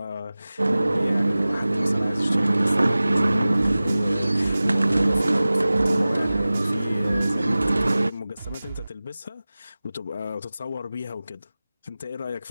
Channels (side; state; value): both; inverted; correlation -0.97